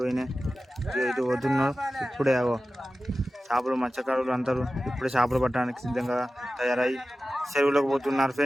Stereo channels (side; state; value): both; normal; correlation 0.95